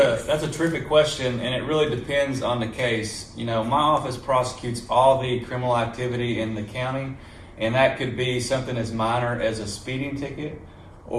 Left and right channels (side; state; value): both; identical; correlation 1.00